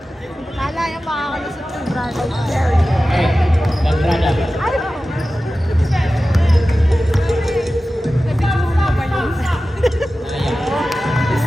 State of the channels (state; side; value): normal; both; correlation 0.95